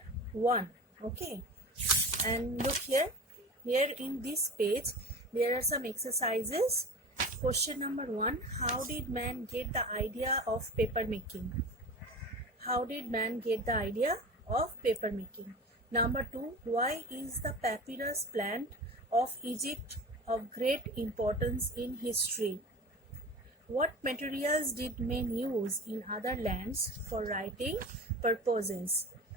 1. Okay, and look here. Here in this page, there are some exercises. Question number 1: how did man get the idea of paper making? How did man get the idea of paper making? Number 2: why is the papyrus plant of Egypt of great importance in history? What materials did men use in other lands for writing purposes?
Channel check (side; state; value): both; normal; correlation 0.34